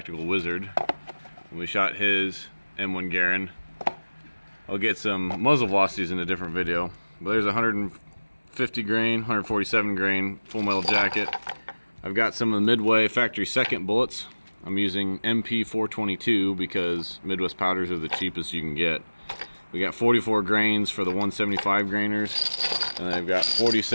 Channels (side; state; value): both; inverted; correlation -1.00